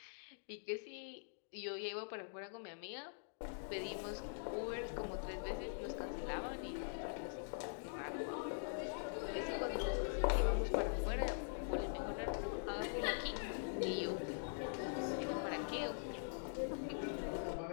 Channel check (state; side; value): silent; right; digital silence